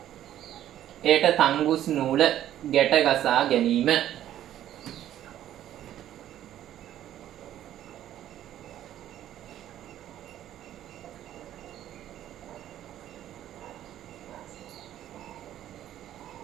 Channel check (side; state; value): left; quieter; 12.0 dB